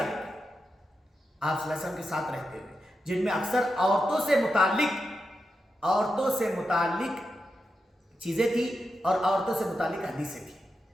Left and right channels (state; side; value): normal; both; correlation 0.88